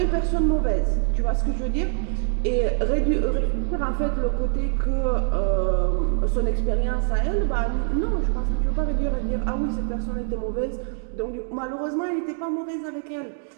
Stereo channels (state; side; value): silent; left; digital silence